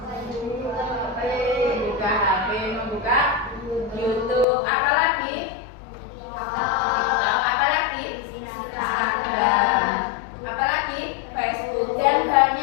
Membuka HP, membuka YouTube, apalagi? Instagram, apalagi Facebook, dan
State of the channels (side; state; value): right; drops out; at 4.5 s